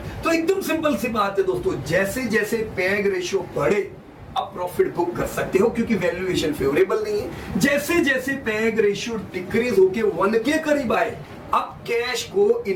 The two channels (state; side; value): identical; both; correlation 1.00